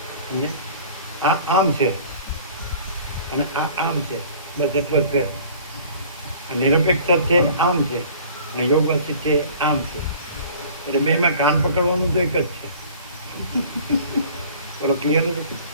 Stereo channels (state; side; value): inverted; both; correlation -0.48